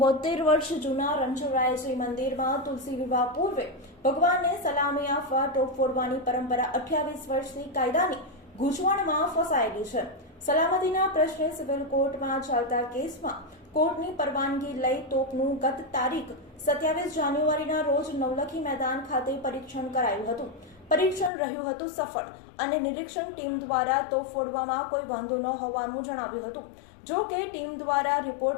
વર્ષ જૂના રણછોડરાયજી મંદિરમાં તુલસી વિવાહ પૂર્વે ભગવાનને સલામી આપવા ટોપ ફોડવાની પરંપરા 28 વર્ષથી કાયદાની ગૂંચવણમાં ફસાયેલી છે. સલામતીના પ્રશ્ને સિવિલ કોર્ટમાં ચાલતા કેસમાં કોર્ટની પરવાનગી લઈ તોપનું ગત તારીખ 27 જાન્યુઆરીના રોજ નવલખી મેદાન ખાતે પરીક્ષણ કરાયું હતું. પરીક્ષણ રહ્યું હતું સફળ અને નિરીક્ષણ ટીમ દ્વારા તોપ ફોડવામાં કોઈ વાંધો ન હોવાનું જણાવ્યું હતું. જો કે ટીમ દ્વારા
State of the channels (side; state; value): right; drops out; at 21.3 s